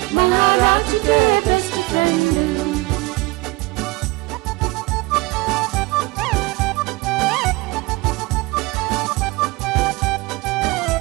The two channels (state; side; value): quieter; left; 22.8 dB